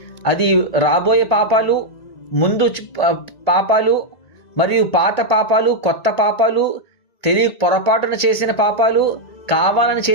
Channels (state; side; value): late; right; 1.8 ms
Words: అది రాబోయే పాపాలు, ముందు పాపాలు, మరియు పాత పాపాలు, కొత్త పాపాలు, పొరపాటున చేసిన పాపాలు, కావాలని